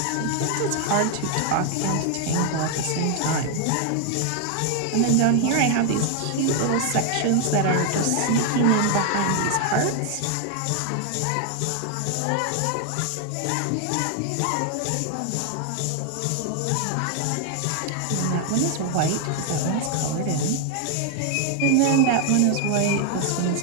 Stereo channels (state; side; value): different; both; correlation 0.00